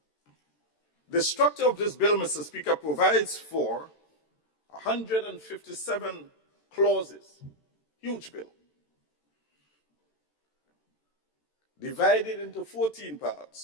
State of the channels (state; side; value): late; right; 13 ms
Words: The structure of this bill, Mr. Speaker, provides for 157 clauses, huge bill, divided into 14